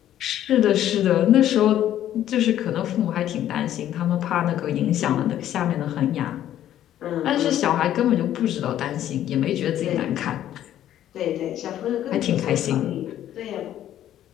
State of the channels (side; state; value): right; quieter; 11.8 dB